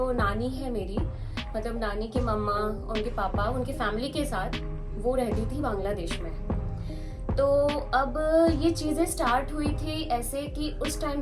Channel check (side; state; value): both; identical; correlation 1.00